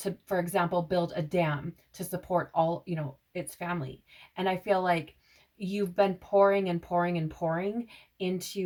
for example, build a dam to support all, its family. And I feel like you've been pouring and pouring and pouring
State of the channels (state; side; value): identical; both; correlation 1.00